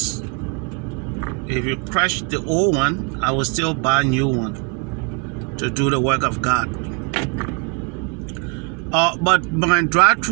if you crash the old one, I will still buy a new one to do the work of God. But my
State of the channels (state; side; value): quieter; left; 31.6 dB